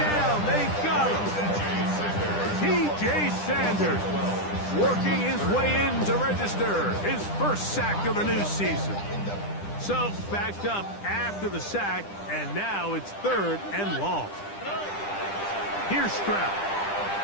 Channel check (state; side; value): late; right; 10 ms